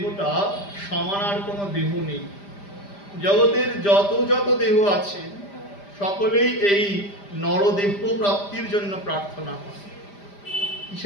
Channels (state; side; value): late; right; 5.0 ms